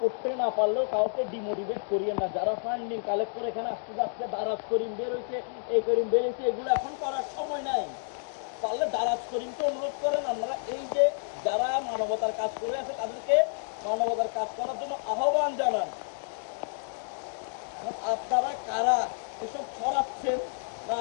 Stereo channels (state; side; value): silent; right; digital silence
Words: করতে না পারলেও কাউকে ডিমোটিভেট করিয়েন না। যারা ফান্ডিং কালেক্ট করে এখানে আসতে যাচ্ছে, দারাজ করিম বেরোইছে, এই করিম বেরোইছে, এগুলো এখন করার সময় নাই। পারলে দারাজ করিমকে অনুরোধ করেন, আপনারা এই যে যারা মানবতার কাজ করে আছে তাদেরকে মানবতার কাজ করার জন্য আহ্বান জানান। আপনারা কারা এসব ছড়াচ্ছেন না